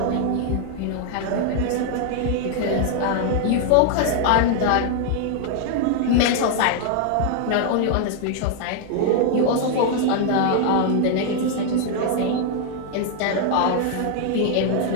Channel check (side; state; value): both; different; correlation 0.00